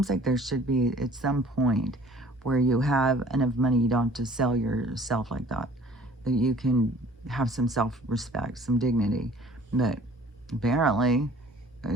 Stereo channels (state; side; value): normal; both; correlation 0.52